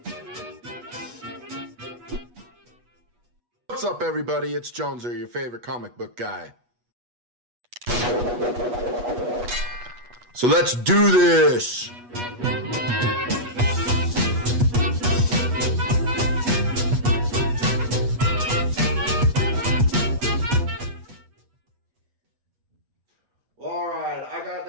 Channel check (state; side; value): late; left; 8.3 ms